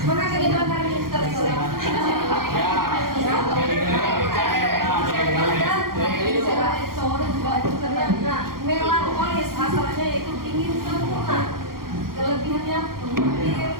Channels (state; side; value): late; left; 0.92 ms